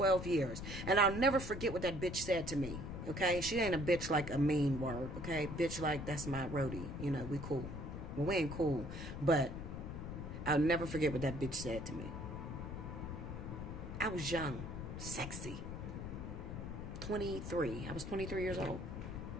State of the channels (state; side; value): noise; left; rumble, 6 dB below the sound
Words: years. And I'll never forget what that bitch said to me. Okay, she ain't a bitch like a mean word. Okay, bitch like that's my roadie. You know, we cool. Well, we ain't cool. But I'll never forget what that bitch said to me. I was young, sexy. 23. I was 23 years old.